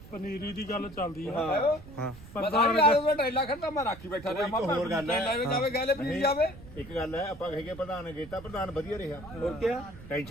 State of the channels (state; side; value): noise; right; rumble, 17 dB below the sound